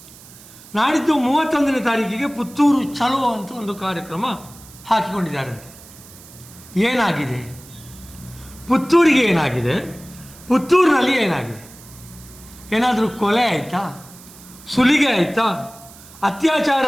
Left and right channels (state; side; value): noise; right; hiss, 20 dB below the sound